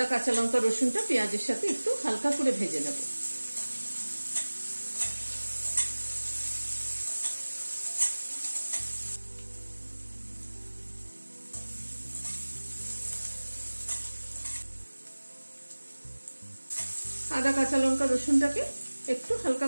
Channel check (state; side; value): inverted; both; correlation -1.00